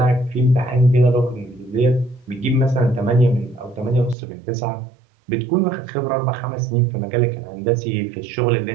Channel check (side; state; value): left; drops out; at 4.2 s